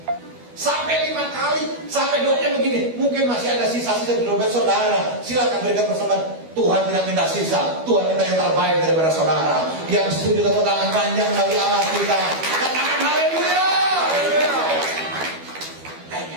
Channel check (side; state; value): left; late; 12 ms